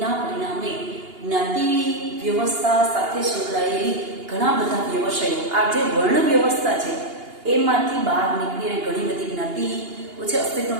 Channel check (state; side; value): late; left; 2.8 ms